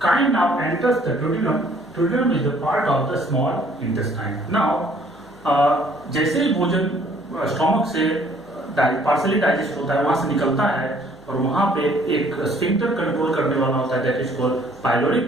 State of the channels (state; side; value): noise; left; hum, 30 dB below the sound